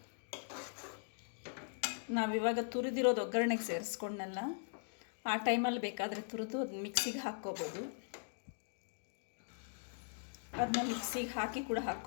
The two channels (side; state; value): right; silent; digital silence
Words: ನಾವಿವಾಗ ತುರಿದಿರೋದು ಒಗ್ಗರಣೆಗೆ ಸೇರಿಸ್ಕೊಂಡಲ್ಲ, ಆ ಟೈಮಲ್ಲಿ ಬೇಕಾದರೆ ತುರಿದು ಅದು ಮಿಕ್ಸಿಗೆ ಹಾಕ್ಕೋಬೋದು. ಅದನ್ನ ಮಿಕ್ಸಿಗೆ ಹಾಕಿ ಕೂಡ